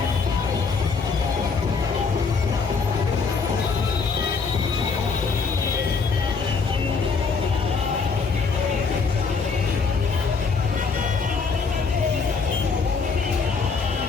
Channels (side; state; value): right; quieter; 4.9 dB